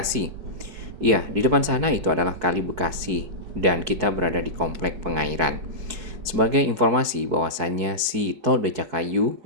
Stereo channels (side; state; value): left; late; 4.6 ms